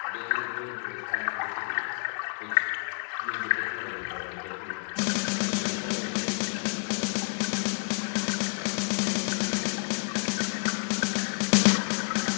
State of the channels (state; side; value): silent; right; digital silence